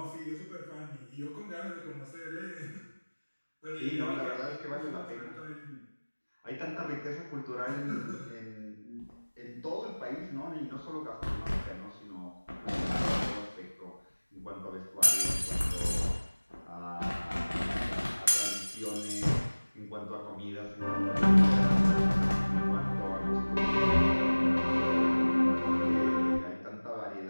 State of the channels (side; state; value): both; inverted; correlation -1.00